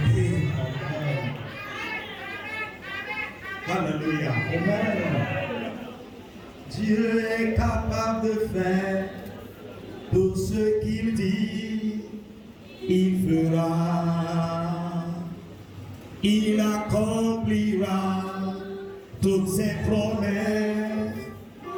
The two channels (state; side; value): identical; both; correlation 1.00